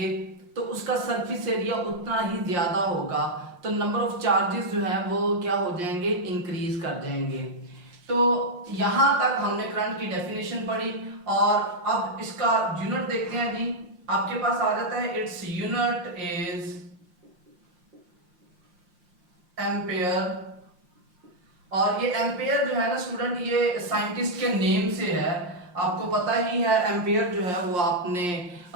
तो उसका सरफेस एरिया उतना ही ज्यादा होगा, तो नंबर ऑफ चार्जेस जो है वो क्या हो जाएंगे? इंक्रीज कर जाएंगे। तो यहां तक हमने करंट की डेफिनेशन पढ़ी और अब इसका यूनिट देखते हैं जी। आपके पास आ जाता है इट्स यूनिट इज एम्पेयर। और ये एम्पेयर जो है ना स्टूडेंट, ये साइंटिस्ट के नेम से है। आपको पता ही है एम्पेयर जो है वो आपने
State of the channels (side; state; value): left; late; 5.7 ms